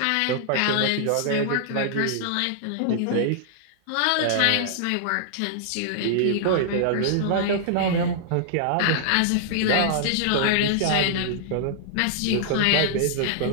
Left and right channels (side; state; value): both; different; correlation -0.01